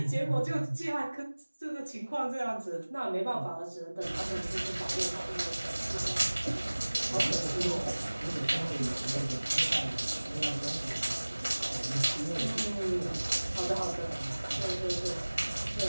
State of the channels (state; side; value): inverted; both; correlation -1.00